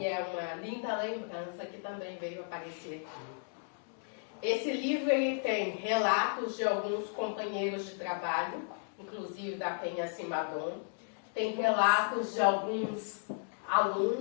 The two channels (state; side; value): silent; right; digital silence